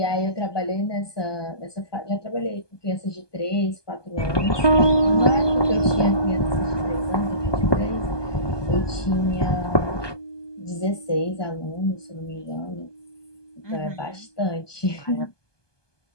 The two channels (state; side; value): late; right; 1.2 ms